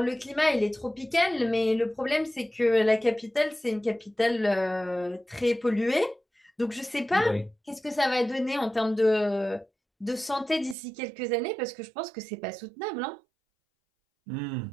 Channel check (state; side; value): drops out; left; at 10.8 s